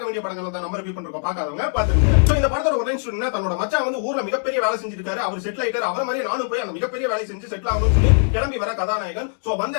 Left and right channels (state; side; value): silent; right; 64 dB below the other